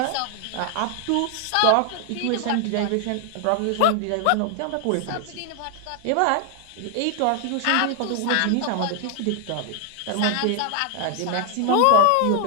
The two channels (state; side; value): different; both; correlation 0.00